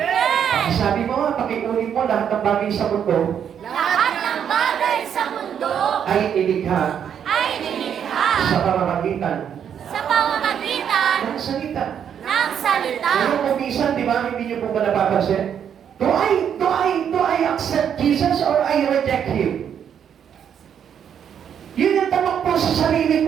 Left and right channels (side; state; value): left; quieter; 8.5 dB